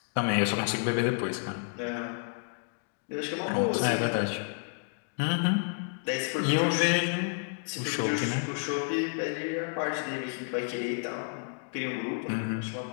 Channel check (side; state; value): right; silent; 57 dB below the other